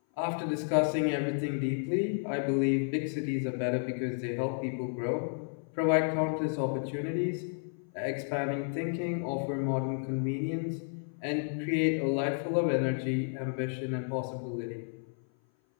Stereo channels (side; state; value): right; silent; 57 dB below the other